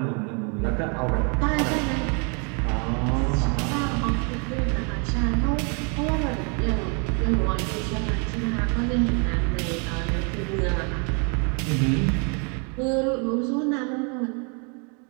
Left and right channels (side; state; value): left; quieter; 36.3 dB